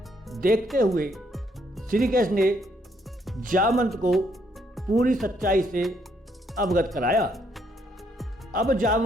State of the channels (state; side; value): normal; both; correlation 0.71